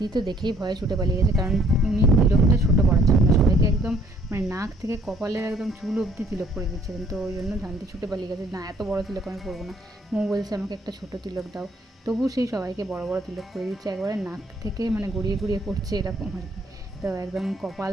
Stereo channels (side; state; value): both; normal; correlation 0.63